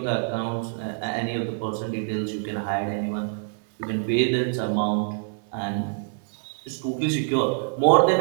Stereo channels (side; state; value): left; silent; digital silence